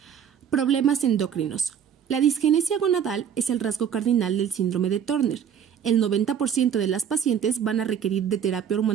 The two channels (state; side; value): quieter; left; 8.3 dB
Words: Problemas endocrinos. La disgenesia gonadal es el rasgo cardinal del síndrome de Turner. El 90% de las pacientes van a requerir de terapia